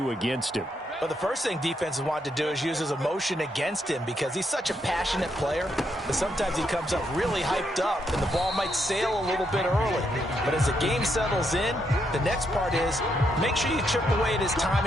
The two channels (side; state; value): both; normal; correlation 0.78